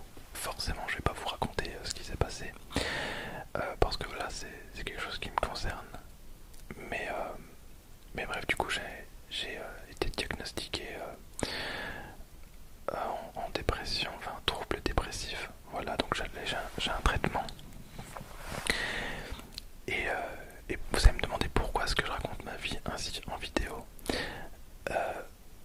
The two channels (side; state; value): both; identical; correlation 1.00